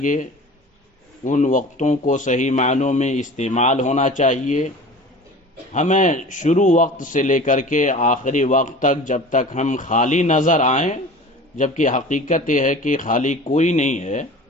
ان وقتوں کو صحیح معنوں میں استعمال ہونا چاہیے۔ ہمیں شروع وقت سے لے کر کے آخری وقت تک جب تک ہم خالی نظر آئیں، جبکہ حقیقت یہ ہے کہ خالی کوئی نہیں ہے،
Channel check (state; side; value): normal; both; correlation 0.39